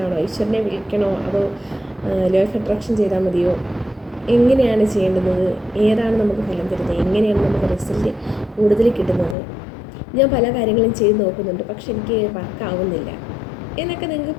ആണോ, ഈശ്വരനെ വിളിക്കണോ അതോ ലോ ഓഫ് അട്രാക്ഷൻ ചെയ്താൽ മതിയോ, എങ്ങനെയാണ് ചെയ്യേണ്ടുന്നത്, ഏതാണ് നമുക്ക് ഫലം തരുന്നത്, എങ്ങനെയാണ് നമുക്ക് റിസൾട്ട് കൂടുതൽ കിട്ടുന്നത്. ഞാൻ പല കാര്യങ്ങളും ചെയ്ത് നോക്കുന്നുണ്ട്, പക്ഷെ എനിക്ക് വർക്കാവുന്നില്ല എന്നൊക്കെ നിങ്ങൾക്ക്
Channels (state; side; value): drops out; right; at 9.3 s